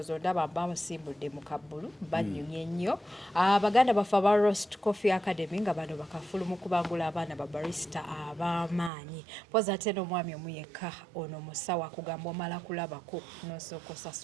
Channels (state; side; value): drops out; left; at 8.9 s